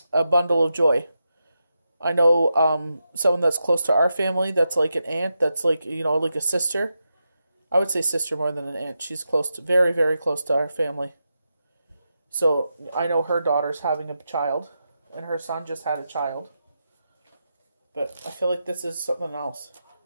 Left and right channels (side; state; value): both; inverted; correlation -0.87